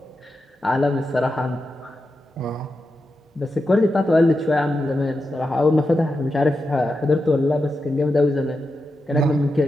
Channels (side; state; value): both; normal; correlation 0.89